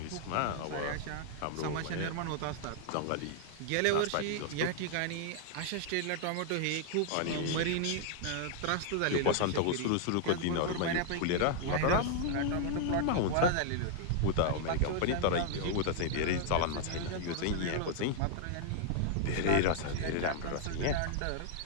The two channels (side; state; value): both; different; correlation 0.00